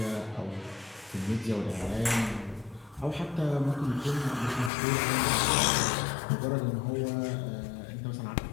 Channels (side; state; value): right; drops out; at 4.7 s